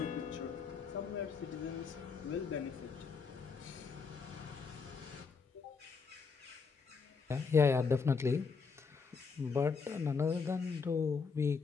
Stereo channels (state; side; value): quieter; right; 5.3 dB